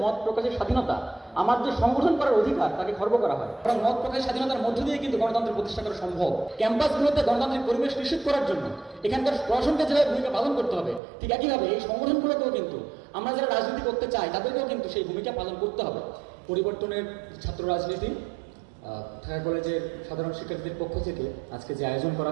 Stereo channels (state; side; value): drops out; left; at 11.0 s